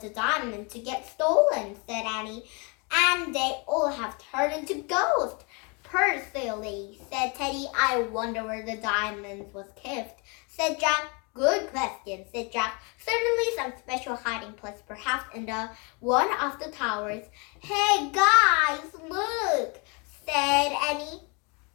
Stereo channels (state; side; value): quieter; right; 31.8 dB